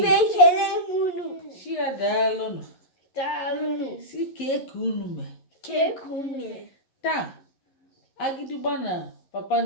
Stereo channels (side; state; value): right; late; 11 ms